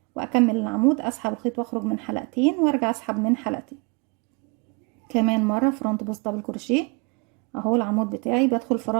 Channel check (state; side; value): quieter; left; 30.3 dB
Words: وأكمل العمود. أسحب الخيط وأخرج من حلقتين وأرجع أسحب من حلقتين. كمان مرة فرونت بوست دبل كروشيه اهو العمود بتاعي، بدخل